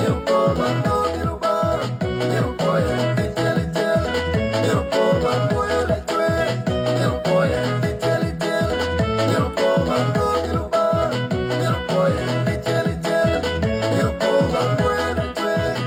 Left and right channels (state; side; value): identical; both; correlation 1.00